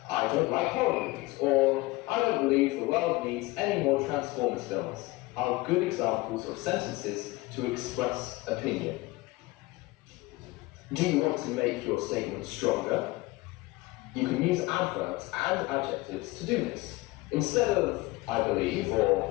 I don't like horror movies, or I don't believe the world needs any more Transformers films, are good examples of sentences to express opinion. Do you want to make your statement stronger? You can use adverbs and adjectives to do this. Instead of I believe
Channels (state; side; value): quieter; right; 20.9 dB